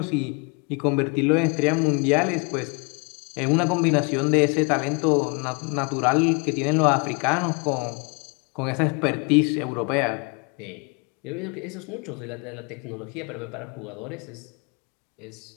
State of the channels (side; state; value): right; quieter; 33.2 dB